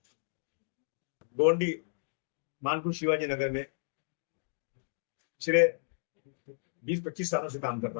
गोंडी मानकुश शिवाजी नगर में पिछले 20-25 सालों से काम कर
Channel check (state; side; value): silent; right; digital silence